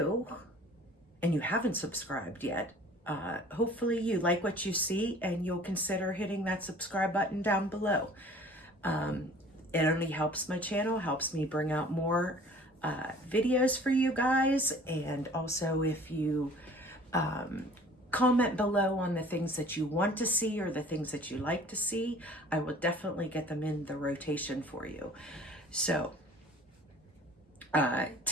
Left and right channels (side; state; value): both; normal; correlation 0.48